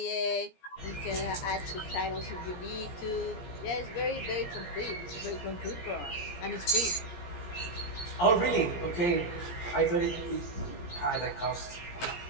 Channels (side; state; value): right; late; 17 ms